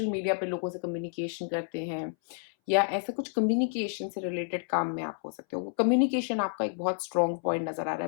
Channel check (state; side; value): silent; right; 58 dB below the other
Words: मीडिया पे लोगों से कम्युनिकेशन करते हैं, या ऐसे कुछ कम्युनिकेशन से रिलेटेड काम में आप हो सकते हो। कम्युनिकेशन आपका एक बहुत स्ट्रॉन्ग पॉइंट नजर आ रहा